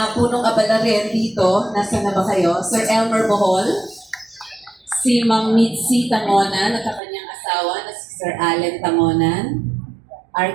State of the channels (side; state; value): left; drops out; at 7.0 s